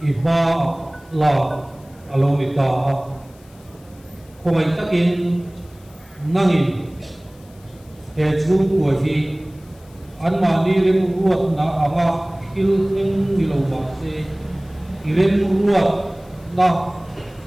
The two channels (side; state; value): left; noise; hiss, 28 dB below the sound